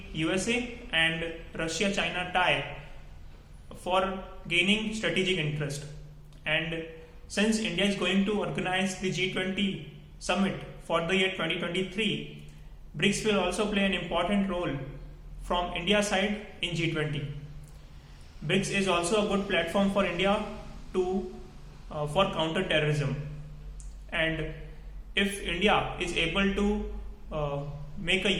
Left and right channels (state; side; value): identical; both; correlation 1.00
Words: USA and Russia-China tie for gaining strategic interest. And since India is going to organize the G20 summit for the year 2023, BRICS will also play an important role from India's side in G20. BRICS is also a good platform for India for counter-terrorism. And if India is able to make a